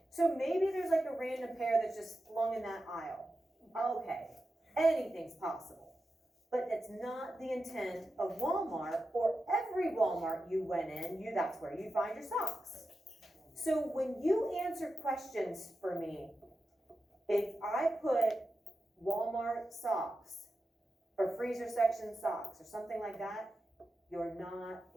So maybe there's like a random pair that's just flung in that aisle. Okay. anything's possible. But it's not the intent of Walmart or every Walmart you went in, that's where you find your socks. So when you answer questions for me, if I put Walmart socks or freezer section socks or something like that, you're not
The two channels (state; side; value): normal; both; correlation 0.90